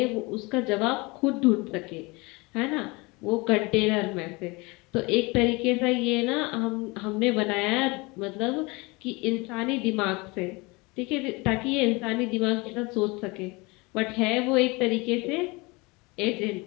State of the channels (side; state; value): right; quieter; 25.7 dB